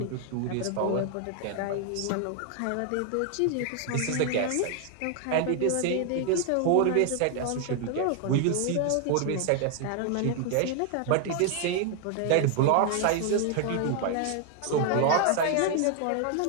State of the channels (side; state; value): both; different; correlation 0.00